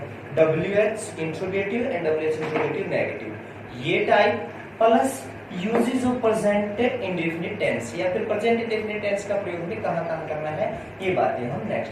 WH interrogative and WH interrogative negative, ये type plus uses of present indefinite tense या फिर प्रेजेंट इंडेफिनिट टेंस का प्रयोग भी कहाँ करना है, ये बातें हम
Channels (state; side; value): identical; both; correlation 1.00